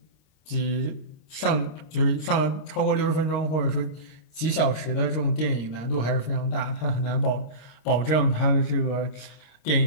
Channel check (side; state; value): right; late; 25 ms